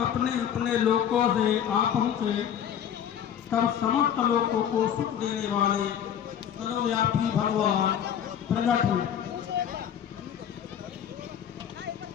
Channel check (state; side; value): quieter; right; 9.2 dB